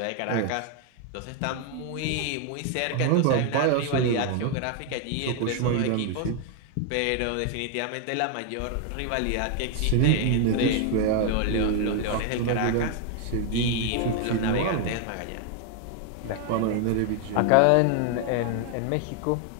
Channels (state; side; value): different; both; correlation 0.01